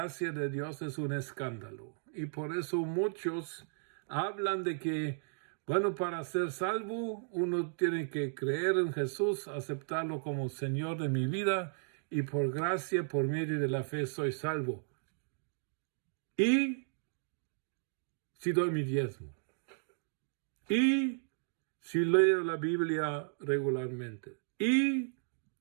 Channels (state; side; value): silent; left; digital silence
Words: de Dios es un escándalo. Y por eso muchos hablan de que, bueno, para ser salvo, uno tiene que creer en Jesús, aceptarlo como Señor de mi vida, y por gracia, por medio de la fe, soy salvo. Y si doy mi diezmo. Y si leo la Biblia regularmente, y